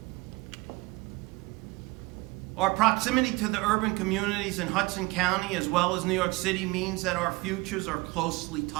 Our proximity to the urban communities in Hudson County as well as New York City means that our futures are closely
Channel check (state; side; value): quieter; left; 23.5 dB